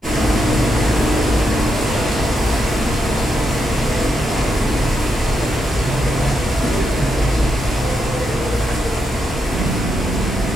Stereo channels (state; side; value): normal; both; correlation 0.82